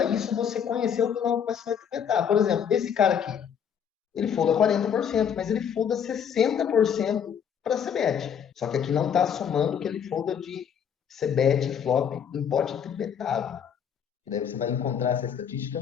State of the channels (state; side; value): quieter; right; 8.0 dB